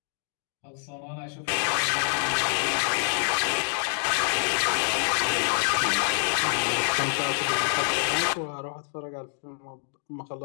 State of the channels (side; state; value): right; silent; digital silence